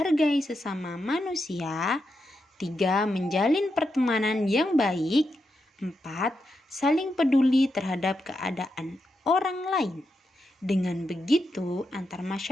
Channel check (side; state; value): both; normal; correlation 0.85